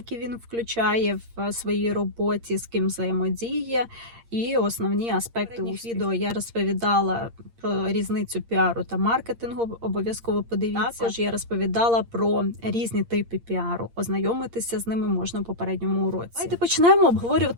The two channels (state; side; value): late; left; 8.7 ms